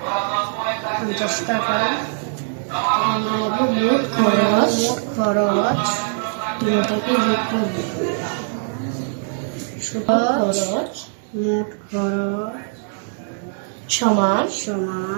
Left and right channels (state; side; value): silent; left; digital silence